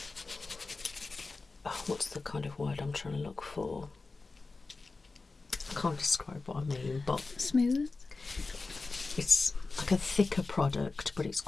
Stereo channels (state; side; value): quieter; right; 3.8 dB